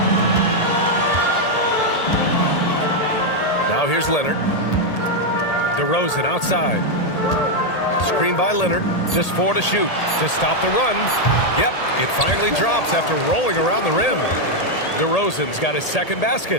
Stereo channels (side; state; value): right; late; 1.8 ms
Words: Now here's Leonard. DeRozan outside. Screen by Leonard. Just 4 to shoot. To stop the run. Yep, it finally drops after rolling around the rim. DeRozan's got his 2nd